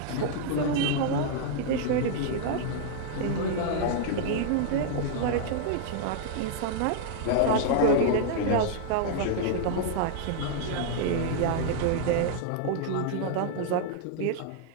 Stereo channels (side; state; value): both; different; correlation -0.01